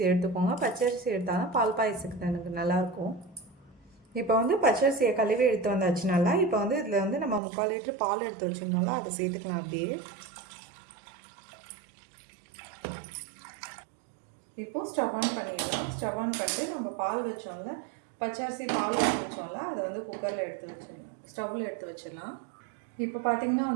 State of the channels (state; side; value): drops out; left; at 7.4 s